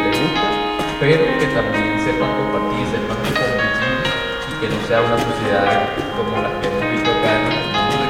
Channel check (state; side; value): identical; both; correlation 1.00